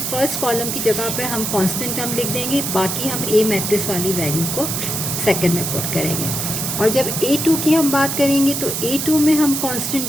कॉलम की जगह पर हम कांस्टेंट टर्म लिख देंगे, बाकी हम ए मैट्रिक्स वाली वैल्यू को सेकंड में पुट करेंगे. और जब A2 की हम बात करेंगे तो A2 में हम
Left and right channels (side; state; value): right; noise; hiss, 2 dB below the sound